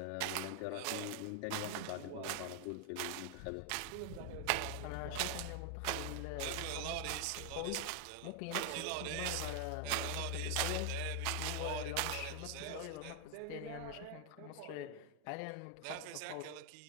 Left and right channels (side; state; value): both; different; correlation 0.00